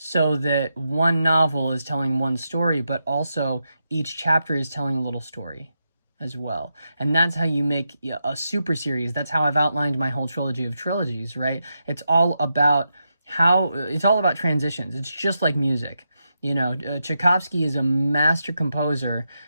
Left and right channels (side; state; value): both; inverted; correlation -0.86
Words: that one novel is telling one story, but also each chapter is telling a little story as well. And that's how you make a super series. That's how I've outlined my whole trilogy of trilogies, right? It's all about transitions. It's just like music. You know, Tchaikovsky is a master composer